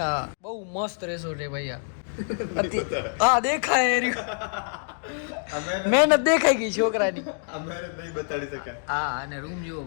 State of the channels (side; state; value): right; silent; digital silence